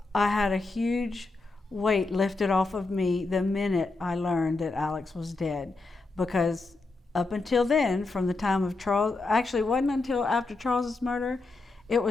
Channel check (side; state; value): right; quieter; 3.4 dB